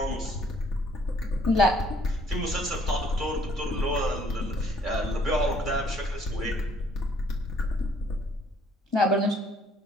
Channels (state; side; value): normal; both; correlation 0.63